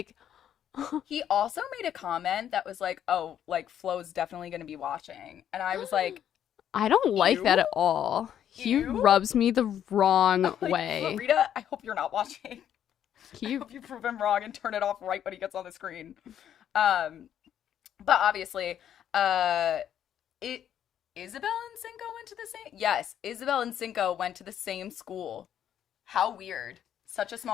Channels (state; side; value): quieter; right; 9.9 dB